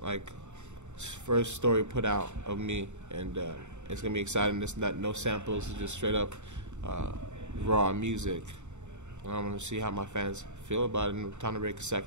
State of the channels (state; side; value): late; left; 0.84 ms